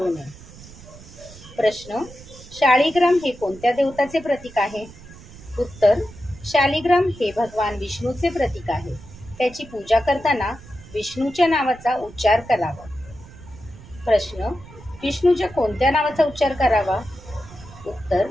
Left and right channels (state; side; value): noise; right; rumble, 19 dB below the sound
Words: नये. प्रश्न, शाळीग्राम हे कोणत्या देवताचे प्रतीक आहे? उत्तर, शालिग्राम हे भगवान विष्णूचे प्रतीक आहे. त्याची पूजा करताना विष्णूच्या नावाचा उच्चार करावा. प्रश्न, विष्णूच्या कोणत्या नावाचा उच्चार करावा? उत्तर,